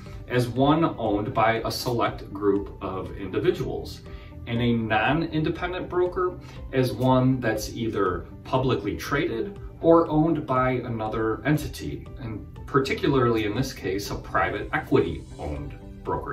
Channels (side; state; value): both; identical; correlation 1.00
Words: as one owned by a select group of individuals, and a non-independent broker as one that's either publicly traded or owned by another entity, and particularly in this case, a private equity owned